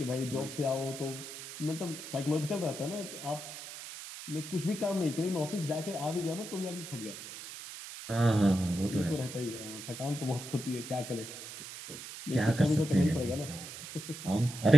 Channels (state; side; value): noise; right; hiss, 10 dB below the sound